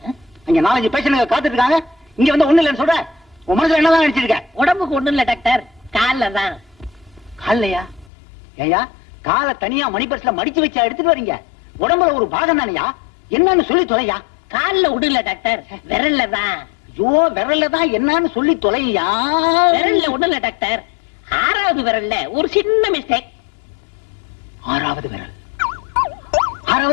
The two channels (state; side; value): drops out; right; at 8.1 s